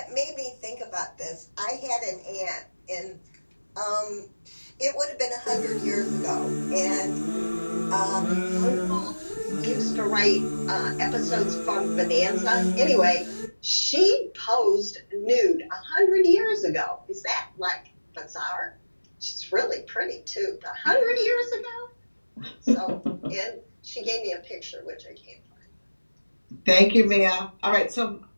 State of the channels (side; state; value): both; inverted; correlation -1.00